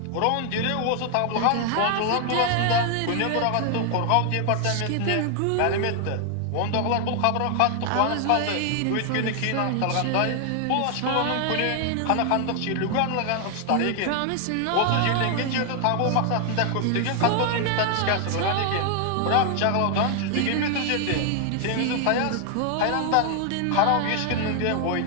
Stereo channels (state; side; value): different; both; correlation 0.00